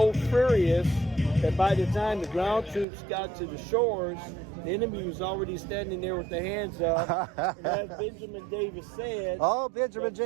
furious that by the time the ground troops got to the shores, the enemy was already standing there with their hands up. And as Benjamin Davis said, Oh, Benjamin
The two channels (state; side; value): drops out; left; at 2.9 s